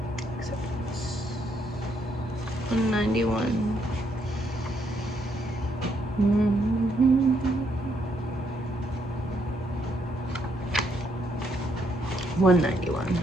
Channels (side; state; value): both; normal; correlation 0.74